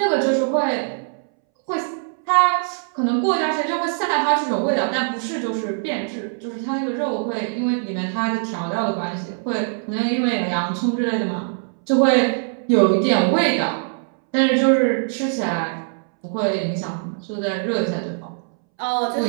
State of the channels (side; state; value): left; silent; 63 dB below the other